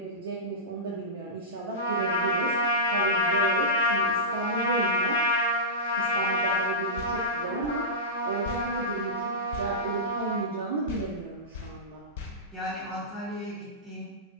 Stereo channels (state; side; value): normal; both; correlation -0.15